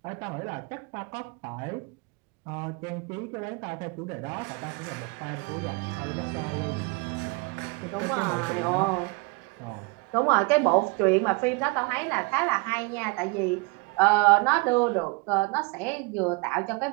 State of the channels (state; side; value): quieter; left; 28.6 dB